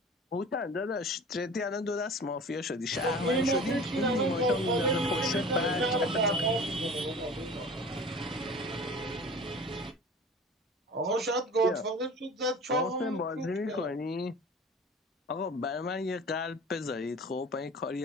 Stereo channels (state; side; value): normal; both; correlation 0.40